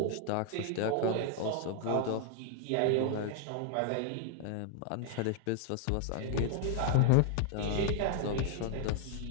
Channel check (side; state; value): both; different; correlation 0.00